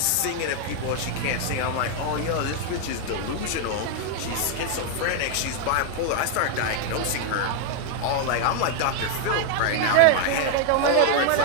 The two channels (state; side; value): different; both; correlation 0.01